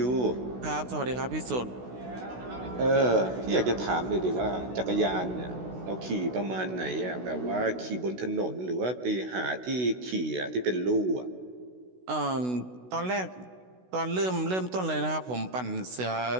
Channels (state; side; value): late; left; 16 ms